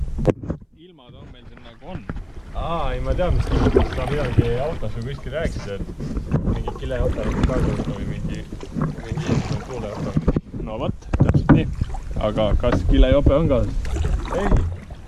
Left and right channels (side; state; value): both; identical; correlation 1.00